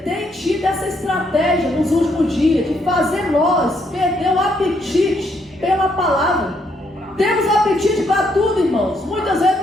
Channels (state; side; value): normal; both; correlation 0.73